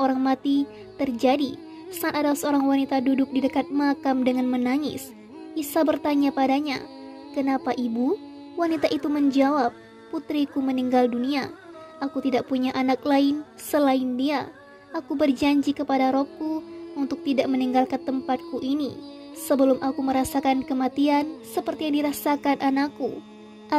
mati terjadi saat ada seorang wanita duduk di dekat makam dengan menangis. Isa bertanya padanya, "Kenapa ibu?" Wanita itu menjawab, "Putriku meninggal dunia. Aku tidak punya anak lain selain dia. Aku berjanji kepada Robku untuk tidak meninggalkan tempatku ini sebelum aku merasakan kematian seperti yang dirasakan anakku,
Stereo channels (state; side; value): identical; both; correlation 1.00